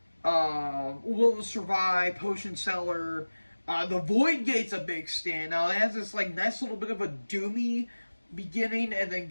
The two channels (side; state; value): both; inverted; correlation -1.00